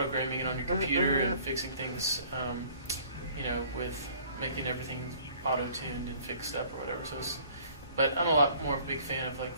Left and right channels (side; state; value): both; inverted; correlation -0.54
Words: it on your computer and fixing things, with making everything auto-tuned and fixed up or whatever. But I'm a lot more of a big fan of like